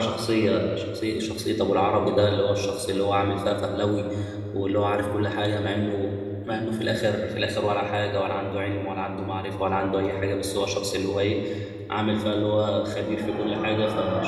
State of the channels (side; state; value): both; identical; correlation 1.00